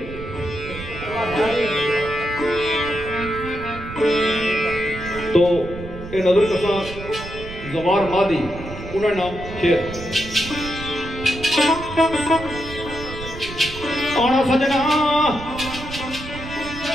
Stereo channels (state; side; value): noise; right; rumble, 11 dB below the sound